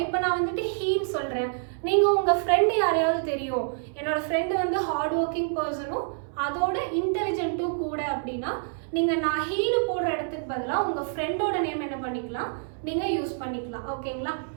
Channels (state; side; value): silent; left; 60 dB below the other